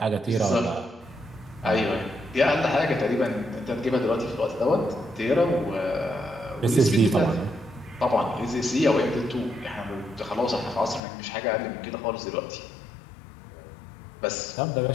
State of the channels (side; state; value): right; drops out; at 11.0 s